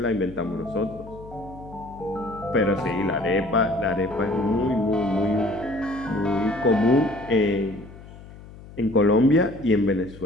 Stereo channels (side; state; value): left; noise; hum, 18 dB below the sound